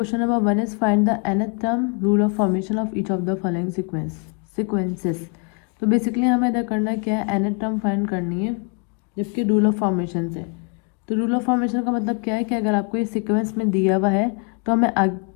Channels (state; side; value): quieter; right; 35.7 dB